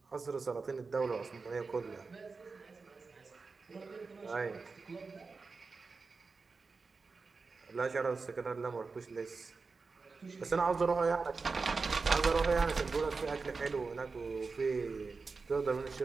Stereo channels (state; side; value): quieter; left; 4.4 dB